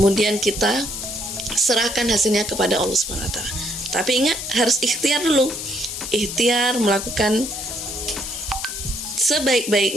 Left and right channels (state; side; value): noise; left; hiss, 6 dB below the sound